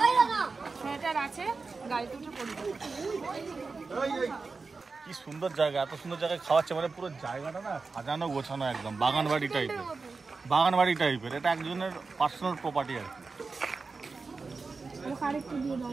সেটার আছে, গাড়িতে উঠে পড়বে। কি সুন্দর জায়গা, এত সুন্দর জায়গায় খাওয়াচ্ছে, মানে পুরো জায়গাটা না সাজানো গোছানো একদম বাগান বাড়ি টাইপের। বাগান বাড়ি টাইপের, এটা একজনের পার্সোনাল প্রপার্টি আর কি।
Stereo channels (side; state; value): left; quieter; 4.3 dB